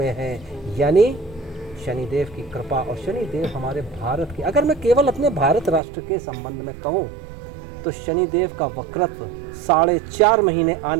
है। यानी शनिदेव की कृपा, और शनिदेव हमारे भारत के, अगर मैं केवल अपने भारत राष्ट्र के संबंध में कहूँ तो शनिदेव का वक्रत्व 4.5 महीने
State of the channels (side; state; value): left; drops out; at 5.8 s